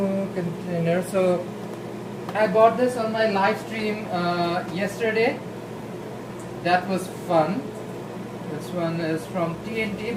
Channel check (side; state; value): both; identical; correlation 1.00